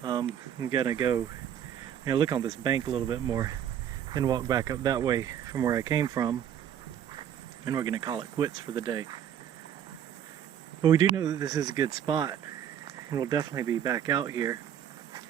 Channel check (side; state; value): left; quieter; 9.6 dB